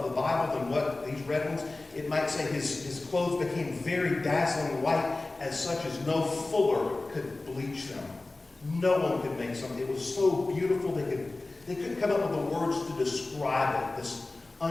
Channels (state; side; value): quieter; right; 3.1 dB